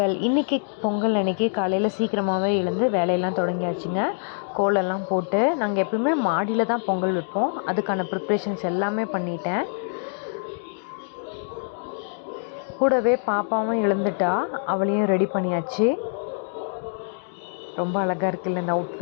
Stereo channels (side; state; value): right; silent; digital silence